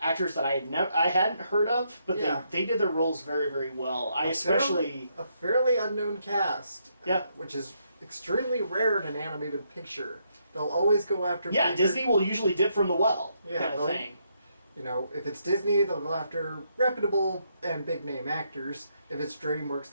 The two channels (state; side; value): inverted; both; correlation -0.76